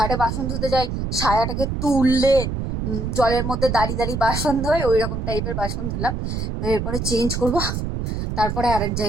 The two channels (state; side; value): noise; right; rumble, 3 dB below the sound